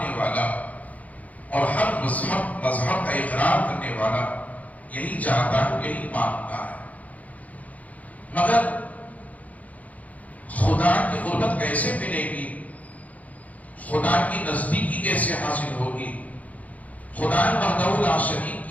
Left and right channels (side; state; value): right; late; 0.073 ms